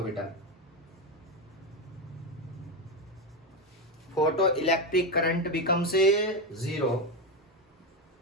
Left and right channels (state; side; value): normal; both; correlation 0.12